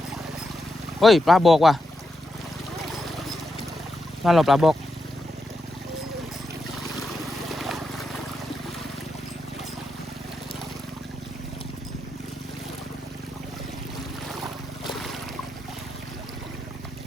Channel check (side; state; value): both; normal; correlation 0.86